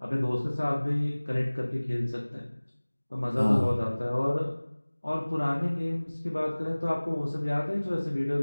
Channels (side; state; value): both; inverted; correlation -1.00